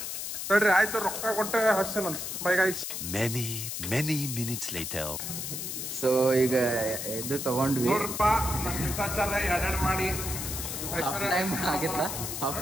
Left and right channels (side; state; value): left; noise; hiss, 5 dB below the sound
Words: ಹೇಳ್ರಿ ಆಯ್ತು, ರೊಕ್ಕ ಕೊಟ್ಟೆ ಹಸ್ತೇನಂತ. Bye guys. Many minutes later. So ಈಗ ಇದು ತಗೊಂಡ್ವಿ. ನೋಡ್ರಪ್ಪ, ಎರಡೆರಡು ಮಾಡಿ ಹಾಫ್ ಟೈಮ್ ಆಗಿತ್ತ. ಹಾಫ್